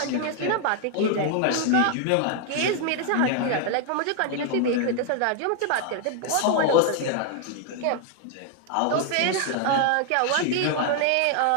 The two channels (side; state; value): both; different; correlation 0.00